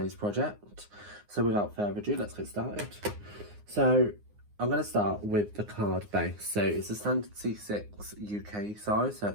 project. So without further ado, let's get started. So I'm going to start with the card base. So it's a standard C6 UK size, so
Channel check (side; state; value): left; late; 9.6 ms